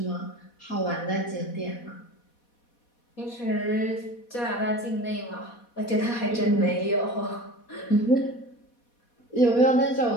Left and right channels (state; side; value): late; right; 4.2 ms